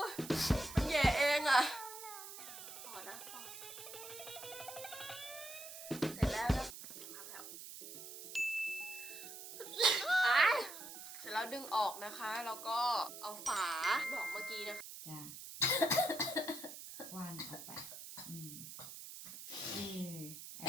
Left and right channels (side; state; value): right; noise; hiss, 11 dB below the sound